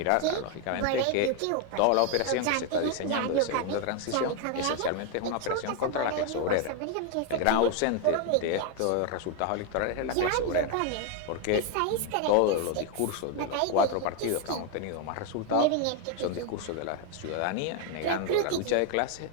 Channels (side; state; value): both; different; correlation 0.01